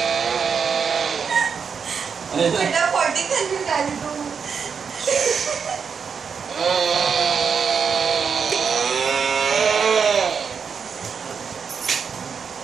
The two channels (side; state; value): left; quieter; 6.3 dB